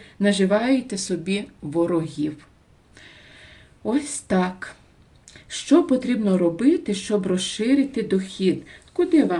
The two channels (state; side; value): identical; both; correlation 1.00